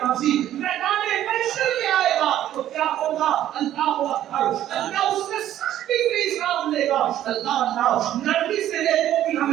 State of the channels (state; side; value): quieter; left; 12.2 dB